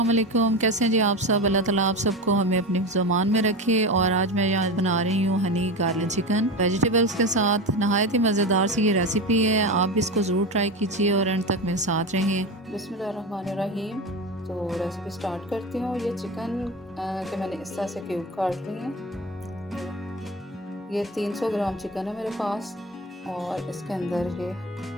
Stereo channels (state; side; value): normal; both; correlation 0.24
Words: वालेकुम। कैसे हैं जी आप सब? अल्लाह ताला आप सबको हमें अपनी ज़ुबान में रखे। और आज मैं यहाँ बना रही हूँ हनी गार्लिक चिकन वेजिटेबल्स के साथ। नहायत ही मज़ेदार सी ये रेसिपी है, आप भी इसको ज़रूर ट्राई कीजिए और एंड तक मेरे साथ रहें। बिस्मिल्लाहिर्रहमानिर्रहीम। तो रेसिपी स्टार्ट करती हूँ। ये चिकन के मैंने इस तरह से क्यूब काट लिए हैं। ये 300 ग्राम चिकन है मेरे पास और इसके अंदर ये